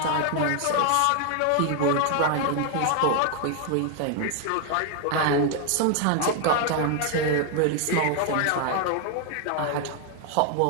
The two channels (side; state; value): both; different; correlation 0.00